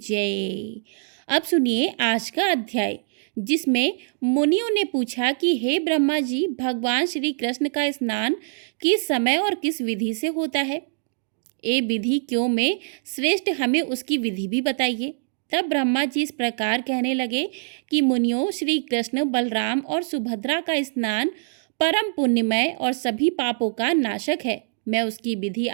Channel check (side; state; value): left; silent; digital silence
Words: अब सुनिए आज का अध्याय, जिसमें मुनियों ने पूछा कि हे ब्रह्मा जी, भगवान श्री कृष्ण का स्नान किस समय और किस विधि से होता है? ये विधि क्यों में श्रेष्ठ, हमें उसकी विधि भी बताइए। तब ब्रह्मा जी इस प्रकार कहने लगे कि मुनियों, श्री कृष्ण, बलराम और सुभद्रा का स्नान परम पुण्यमय और सभी पापों का नाशक है। मैं उसकी विधि